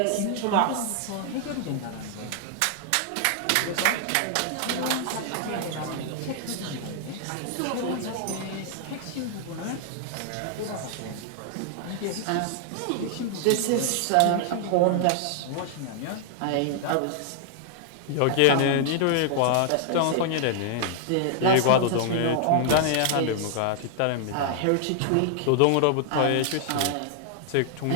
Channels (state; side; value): different; both; correlation 0.00